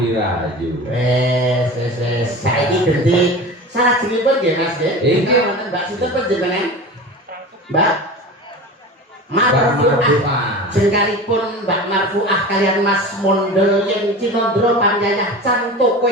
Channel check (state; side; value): normal; both; correlation 0.33